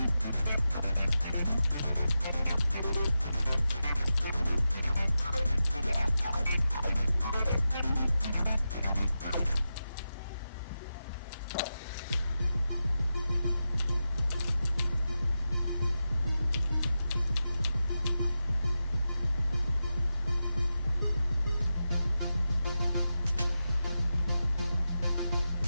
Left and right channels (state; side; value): inverted; both; correlation -0.91